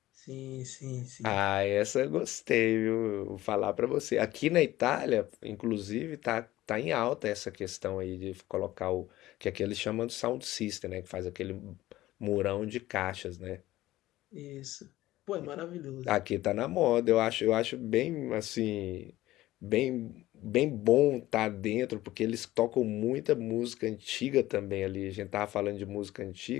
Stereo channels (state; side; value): quieter; right; 16.0 dB